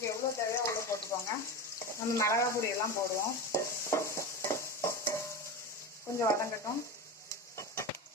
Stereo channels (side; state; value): both; normal; correlation 0.23